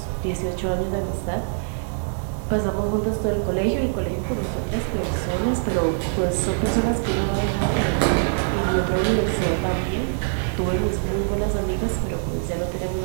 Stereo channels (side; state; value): left; silent; digital silence